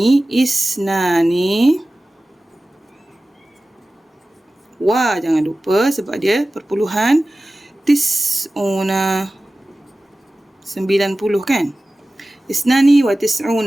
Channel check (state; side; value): normal; both; correlation 0.96